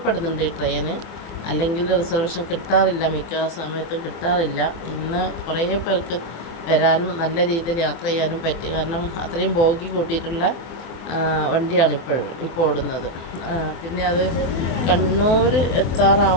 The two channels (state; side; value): late; right; 24 ms